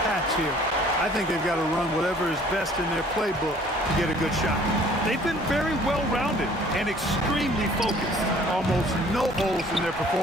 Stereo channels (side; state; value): both; normal; correlation 0.55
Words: patch here. I think they've got to run whatever is best in their playbook to get a good shot. They've been very well-rounded and extremely focused. Almost no holes in their